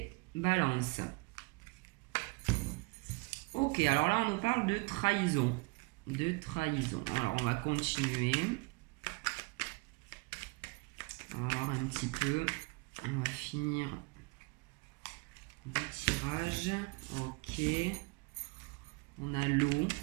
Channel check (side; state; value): left; quieter; 28.0 dB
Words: balances. Ok, alors là on nous parle de trahison. De trahison. Alors on va continuer. On va voir un petit peu. On va finir le tirage. Ok. On a l'eau.